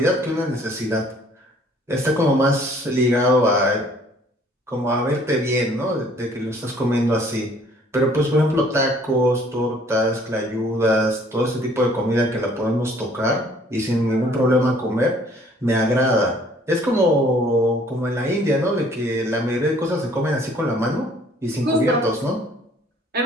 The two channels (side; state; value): both; normal; correlation 0.58